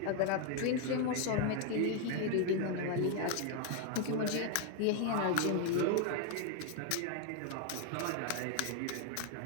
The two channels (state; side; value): different; both; correlation 0.01